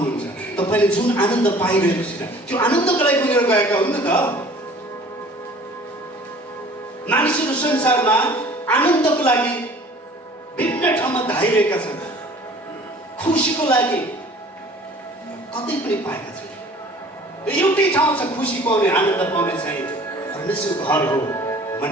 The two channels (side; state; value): both; normal; correlation 0.49